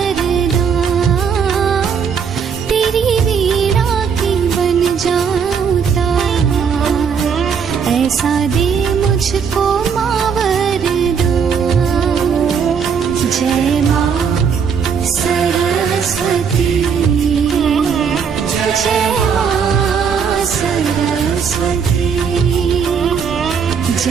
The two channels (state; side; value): quieter; left; 6.6 dB